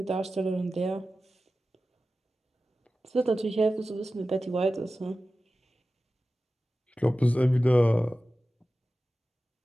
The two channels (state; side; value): normal; both; correlation 0.94